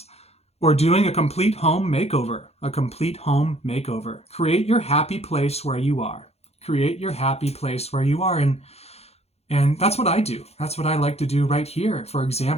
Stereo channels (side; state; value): right; late; 0.30 ms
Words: Or doing a complete home makeover. Create your happy place where you are. And that's what I do. That's what I like to do right here. For